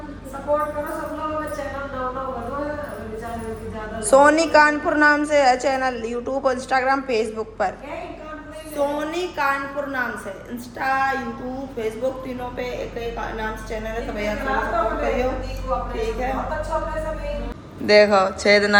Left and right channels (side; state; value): both; identical; correlation 1.00